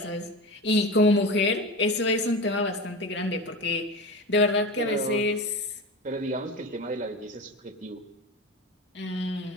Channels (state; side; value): normal; both; correlation 0.26